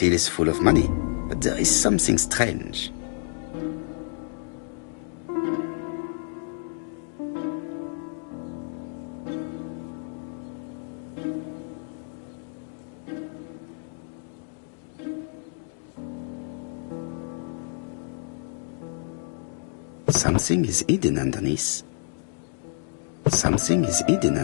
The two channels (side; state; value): right; silent; digital silence